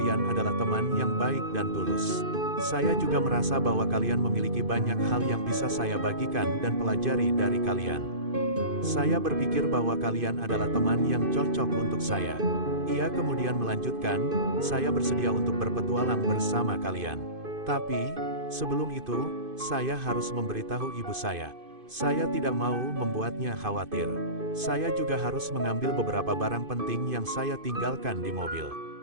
adalah teman yang baik dan tulus. Saya juga merasa bahwa kalian memiliki banyak hal yang bisa saya bagikan dan pelajari dari kalian. Saya berpikir bahwa kalian adalah teman yang cocok untuk saya." Ia kemudian melanjutkan, "Saya bersedia untuk berpetualang bersama kalian. Tapi, sebelum itu, saya harus memberitahu ibu saya. Saya tidak mau membuatnya khawatir. Saya juga harus mengambil beberapa barang penting yang saya tinggalkan di mobil.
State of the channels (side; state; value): left; late; 2.5 ms